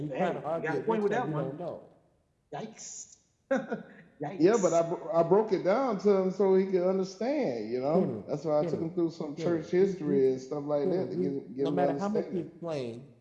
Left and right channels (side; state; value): both; identical; correlation 1.00